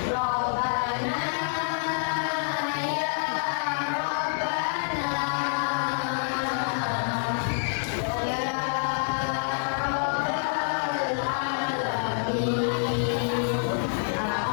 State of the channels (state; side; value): silent; right; 60 dB below the other